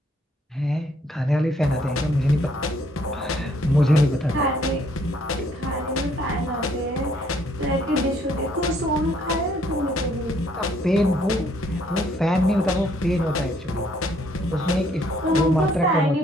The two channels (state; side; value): normal; both; correlation 0.66